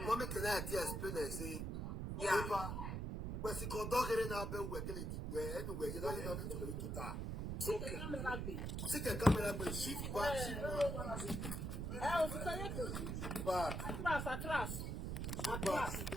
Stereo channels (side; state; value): right; noise; rumble, 2 dB below the sound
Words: mommy can explain and say, yeah, when she conduct it in our bed, where anyway, you know, you don't need to do that. Take a camera, but shift back, shift back.